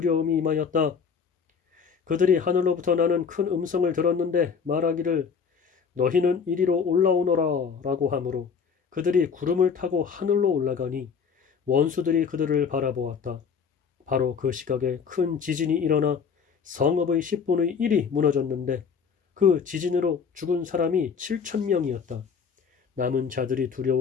임하였다. 그들이 하늘로부터 나는 큰 음성을 들었는데 말하기를 너희는 이리로 올라오너라 라고 하므로 그들이 구름을 타고 하늘로 올라가니 원수들이 그들을 바라보았다. 바로 그 시각에 큰 지진이 일어나 성읍의 10분의 1이 무너졌는데 그 지진으로 죽은 사람이 7,000명이었다. 남은 자들이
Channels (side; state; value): right; quieter; 6.3 dB